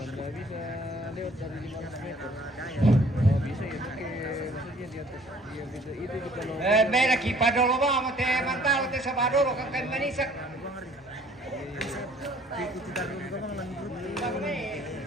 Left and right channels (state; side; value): normal; both; correlation 0.56